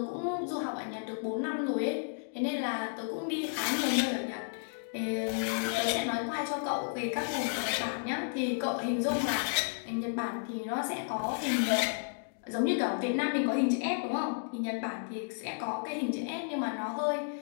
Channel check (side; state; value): right; silent; digital silence